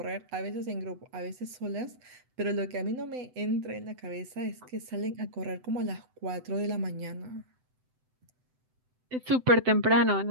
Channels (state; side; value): late; left; 7.9 ms